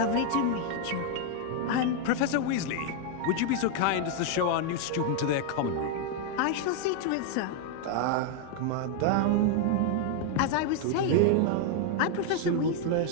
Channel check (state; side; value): different; both; correlation 0.00